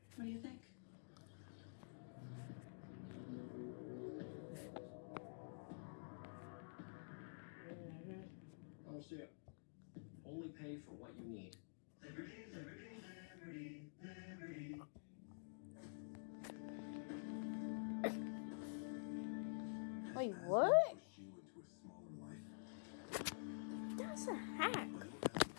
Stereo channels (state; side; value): silent; right; digital silence